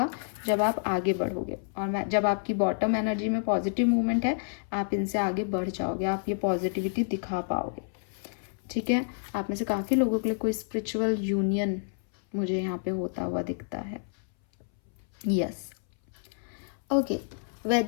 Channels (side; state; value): right; silent; 59 dB below the other